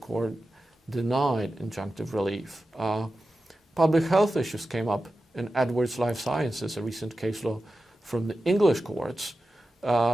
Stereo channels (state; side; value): normal; both; correlation 0.93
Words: denied injunctive relief. Public health issues came up in Edwards Life Sciences, a recent case law from the English courts,